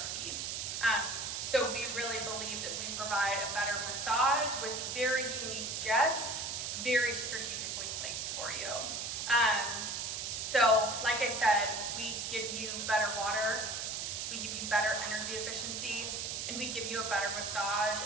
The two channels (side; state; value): right; noise; hiss, 3 dB below the sound